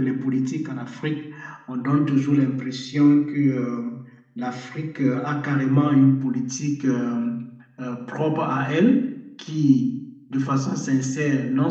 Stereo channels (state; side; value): identical; both; correlation 1.00